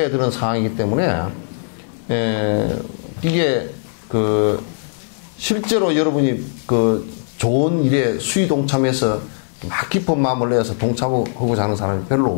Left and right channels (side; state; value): right; silent; 59 dB below the other